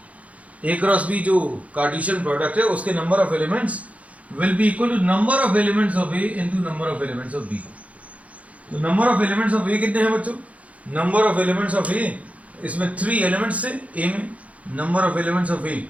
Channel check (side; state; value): left; late; 0.066 ms